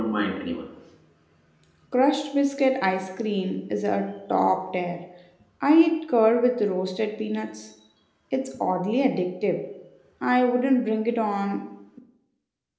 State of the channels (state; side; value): identical; both; correlation 1.00